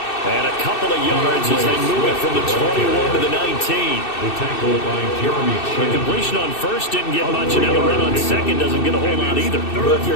And a couple of yards as they move it from the 21 to the 19. The tackle by Jeremy Chin. The completion on first didn't get much, and now the run on second doesn't get a whole lot either. Well, if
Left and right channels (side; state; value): right; late; 2.6 ms